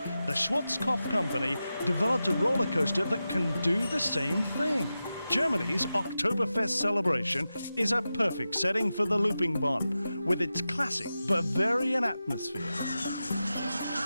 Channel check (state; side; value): inverted; both; correlation -0.92